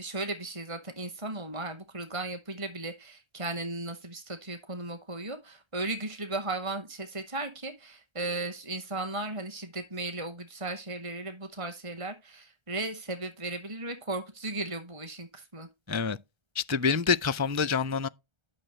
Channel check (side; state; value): left; late; 1.3 ms